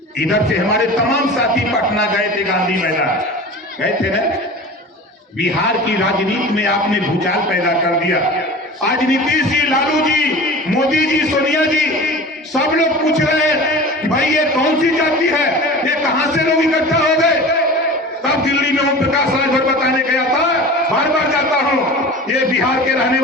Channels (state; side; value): normal; both; correlation 0.36